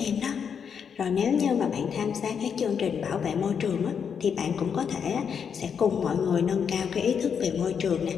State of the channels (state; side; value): quieter; right; 7.1 dB